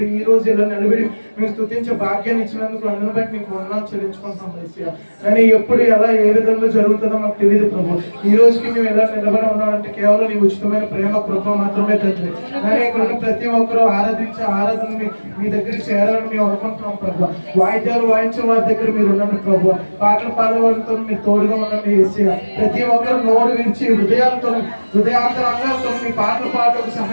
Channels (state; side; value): inverted; both; correlation -1.00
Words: ఈ రోజు ఇలా నిలబడి మేము స్తుతించే భాగ్యాన్ని ఇచ్చినందుకు అందరిని బట్టి మీకు వందనాలు చెల్లించుకుంటున్నాం యేసయ్యా. కానీ ఎప్పుడు ఎలా ఏ విధంగా జరుగుతుందో మాకు తెలియదు ప్రభు. ఈ రోజుకి మేము ఎలా నిలబడి ఉన్నామంటే కేవలం నీ ఉచితమైన ప్రేమ కృప మాత్రమే తండ్రి. కానీ ఇక్కడ ఉన్న ప్రతి ఒక్కరూ ఆరాధించే ఆరాధన మీ దగ్గరికి చేరాలని మేము అనుకుంటున్నాం ప్రభు. వాయిద్యాలు వాయించే వారి దగ్గర మీరు ఉండండి ప్రభు. పాటలు పాడేవారితో మీరు తోడుగా ఉండండి యేసయ్యా. ప్రతి ఒక్కరు నోరు విరిచి హృదయాంతరంగాలతో మీ పాటలు పాటకు